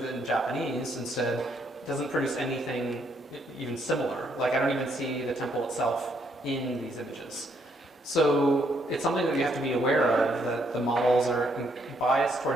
Japanese instead doesn't produce anything even similar. Like I don't even see the temple itself in these images. So it's something that we have to be aware of, that the models are biased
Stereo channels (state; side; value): normal; both; correlation 0.72